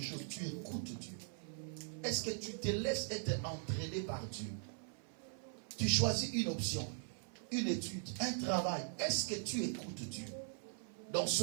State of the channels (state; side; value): silent; left; 50 dB below the other